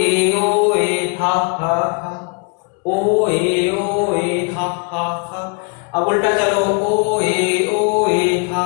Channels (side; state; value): right; quieter; 34.4 dB